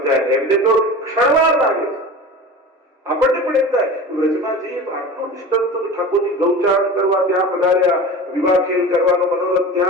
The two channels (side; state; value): both; normal; correlation 0.34